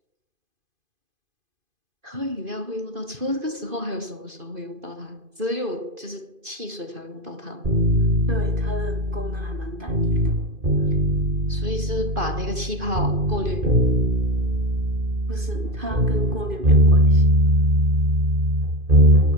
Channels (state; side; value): late; left; 2.5 ms